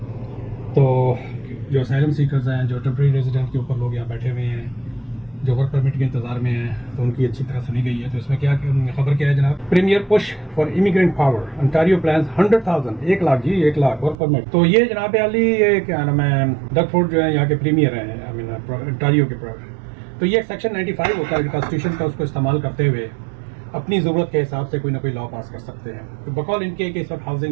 तो जो असाइलम सीकर्स हैं, जो टेम्परेरी रेजिडेंट के ऊपर लोग यहाँ बैठे हुए हैं, जो वर्क परमिट के इंतजार में हैं, तो उनकी अच्छी तरह सुनी गई है। तो इसमें क्या खबर क्या है जनाब? Premier push for immigrant power, Ontario plans 100,000 1 lakh जी 1 लाख वर्क परमिट। तो ये जनाब अली, ये क्या नाम है, डगफोर्ड जो है यहाँ के प्रीमियर हैं, आई मीन अंटारियो के। तो ये सेक्शन 95 होता है कॉन्स्टिट्यूशन का, उसको इस्तेमाल करते हुए अपनी ज़रूरत के हिसाब से कोई ना कोई लॉ पास कर सकते हैं। तो बकौल इनके कि इस वक्त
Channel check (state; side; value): drops out; left; at 14.2 s